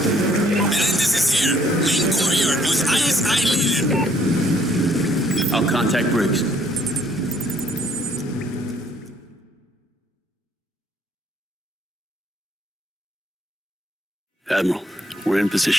Menendez is here. Main courtyard with ISI leader. I'll contact Briggs. Admiral, we're in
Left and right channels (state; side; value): normal; both; correlation 0.65